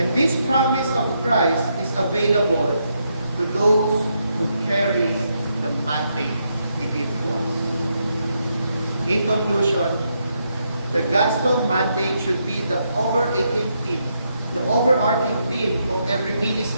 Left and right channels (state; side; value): inverted; both; correlation -0.79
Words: this promise of Christ is available to those who carry the mandate He gives to us. In conclusion, the gospel mandate should be the overarching theme of every